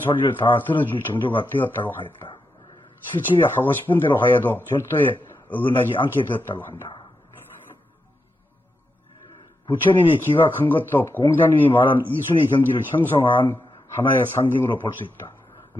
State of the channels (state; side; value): normal; both; correlation 0.86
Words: 다 들어줄 정도가 되었다고 하였다. 70에 하고 싶은 대로 하여도 절도에 어긋나지 않게 되었다고 한다. 부처님이 기가 큰 것도 공자님이 말한 이순의 경지를 형성한 하나의 상징으로 볼 수 있다.